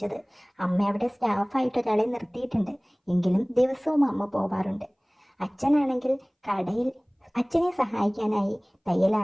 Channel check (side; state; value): both; identical; correlation 1.00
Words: അമ്മ അവിടെ സ്റ്റാഫായിട്ട് ഒരാളെ നിർത്തിയിട്ടുണ്ട്. എങ്കിലും ദിവസവും അമ്മ പോവാറുണ്ട്. അച്ഛനാണെങ്കിൽ കടയിൽ അച്ഛനെ സഹായിക്കാനായി തയ്യൽ